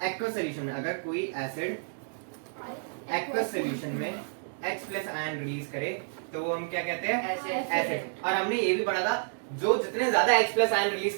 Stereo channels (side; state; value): left; silent; digital silence